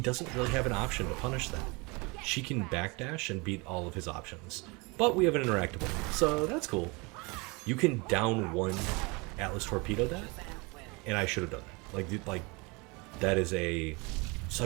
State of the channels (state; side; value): quieter; left; 27.6 dB